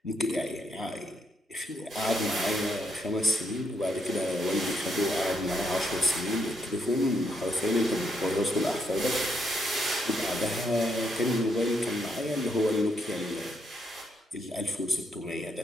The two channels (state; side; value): normal; both; correlation 0.76